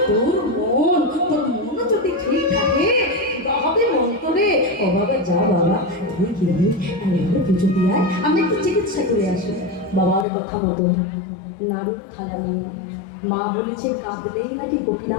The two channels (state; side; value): drops out; right; at 10.2 s